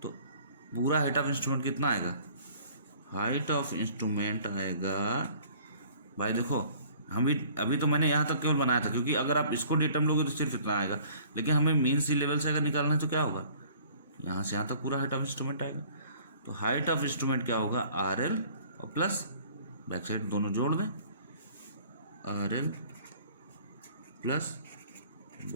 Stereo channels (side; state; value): both; inverted; correlation -0.53